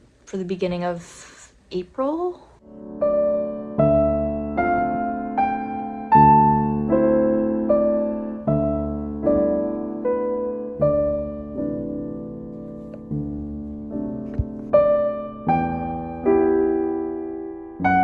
for the beginning of April.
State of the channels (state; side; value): identical; both; correlation 1.00